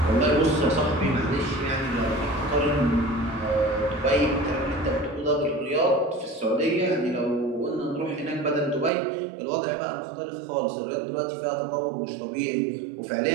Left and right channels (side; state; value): left; drops out; at 8.9 s